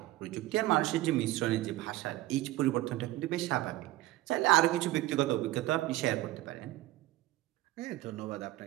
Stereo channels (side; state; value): left; quieter; 16.7 dB